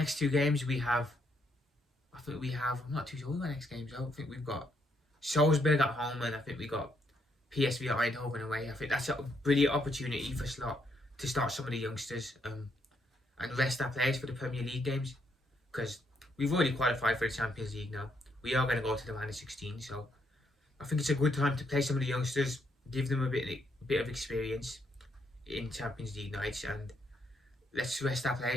2 games I'm not too sure what the next games are. I think we've got Salzburg at home, and I think we got PSV at Eindhoven away. I think that's a brilliant opportunity for Slot to start some of the youngsters and rest our players for the Premier League games, because we've already qualified for the Champions League now. We are going to go to the round of 16, so I think it's a good time to play some of the youngsters, give them a bit of experience in Champions League nights, and let's rest our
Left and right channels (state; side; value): normal; both; correlation 0.75